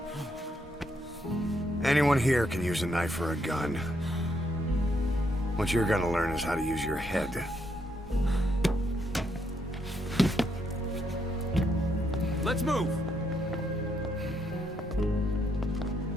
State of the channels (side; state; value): both; normal; correlation 0.76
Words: Anyone here can use a knife or a gun. What you're gonna learn is how to use your head. Let's move!